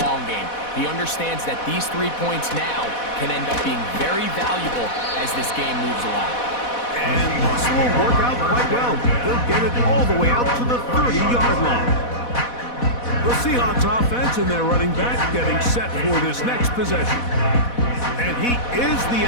long game. He understands that these 3 points now can end up being very valuable as this game moves along. And this will work out quite well. They'll get it all the way out to the 30-yard line. The Seahawks offense and their running back getting set for this next possession. And he is the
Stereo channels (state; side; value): late; right; 4.1 ms